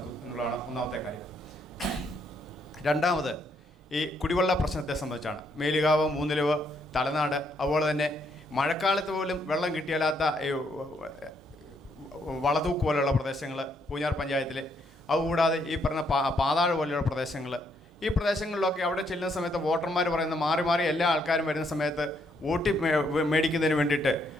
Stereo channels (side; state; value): both; normal; correlation 0.73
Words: എന്നുള്ളതാണ് ഒന്നാമത്തെ കാര്യം. രണ്ടാമത് ഈ കുടിവെള്ള പ്രശ്നത്തെ സംബന്ധിച്ചാണ്. മേലുകാവ്, മൂന്നിലവ്, തലനാട്, അതുപോലെ തന്നെ മഴക്കാലത്ത് പോലും വെള്ളം കിട്ടിയാലാത്ത വളതൂക്ക് പോലെയുള്ള പ്രദേശങ്ങൾ പൂഞ്ഞാർ പഞ്ചായത്തിൽ, അതുകൂടാതെ ഈ പറഞ്ഞ പാതാഴ് പോലെയുള്ള പ്രദേശങ്ങൾ, ഈ പ്രദേശങ്ങളിലൊക്കെ അവിടെ ചെല്ലുന്ന സമയത്ത് വോട്ടർമാർ പറയുന്ന മാറി മാറി എല്ലാ ആൾക്കാരും വരുന്ന സമയത്ത് വോട്ട് മേടിക്കുന്നതിന് വേണ്ടിയിട്ട്,